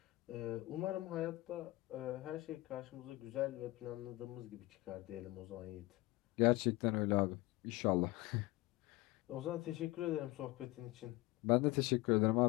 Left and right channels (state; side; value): quieter; right; 20.3 dB